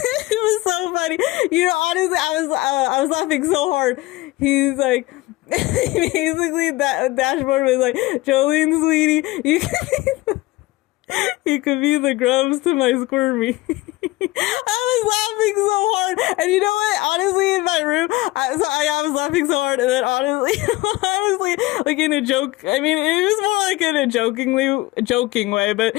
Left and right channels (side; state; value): right; quieter; 19.5 dB